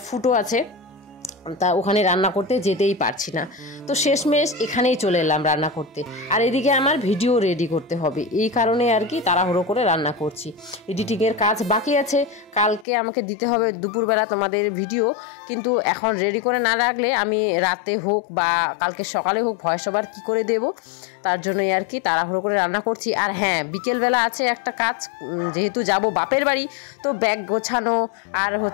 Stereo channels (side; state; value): right; drops out; at 12.9 s